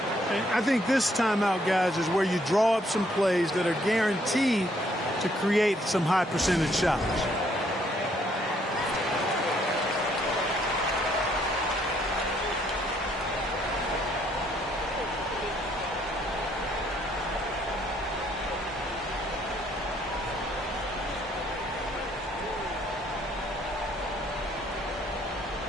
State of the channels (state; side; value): normal; both; correlation 0.68